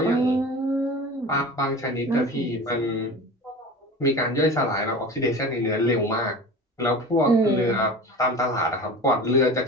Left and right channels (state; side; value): normal; both; correlation 0.35